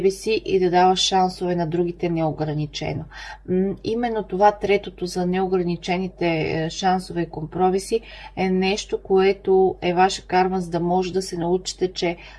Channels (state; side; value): identical; both; correlation 1.00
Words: си и да даваш шансове на другите неограничено. Именно това, третото за неограничените шансове и компромиси, е нещо, което е ваша карма, за да може да се научите, че